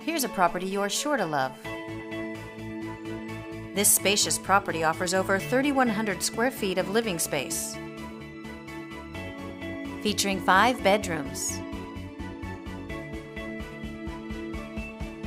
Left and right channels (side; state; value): both; identical; correlation 1.00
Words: Here's a property you're sure to love. This spacious property offers over 3,100 square feet of living space, featuring 5 bedrooms